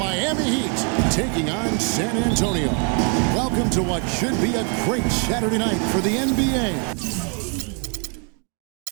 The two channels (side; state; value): left; quieter; 38.8 dB